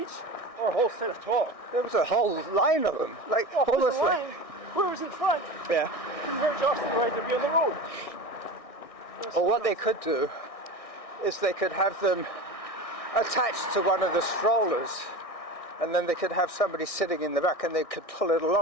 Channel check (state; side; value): late; right; 1.6 ms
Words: or a whole set of 12? there was a whole line of them, like Oh, almost the like, line. Where was in front? yeah. Converge off the right to be on the road. Or what they could do is they could have them attached to one of the strollers, and then they could have somebody sitting in the back and they could pull it